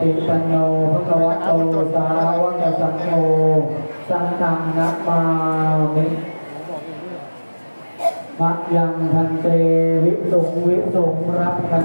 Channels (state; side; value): inverted; both; correlation -1.00